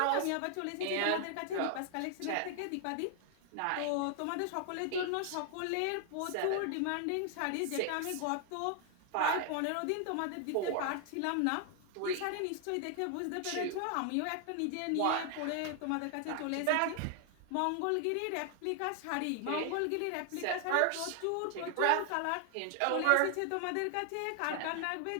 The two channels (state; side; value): different; both; correlation 0.00